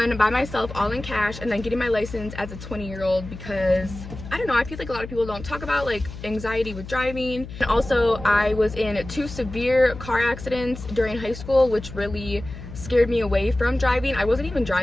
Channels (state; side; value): noise; left; hum, 12 dB below the sound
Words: by myself, all in cash, and then getting my license as a 20-year-old because I don't know, I feel like a lot of people don't talk about like anxiety with driving. And also I was in 2 severe car accidents during high school, which really scared me away from driving. I wasn't even